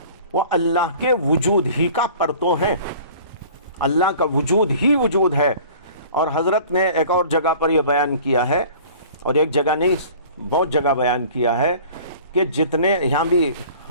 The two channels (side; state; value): both; inverted; correlation -0.46